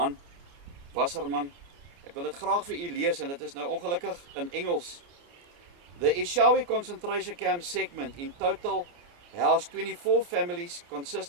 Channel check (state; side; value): late; left; 29 ms